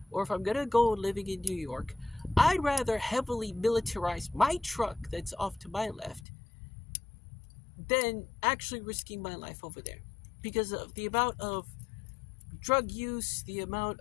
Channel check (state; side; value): drops out; right; at 6.2 s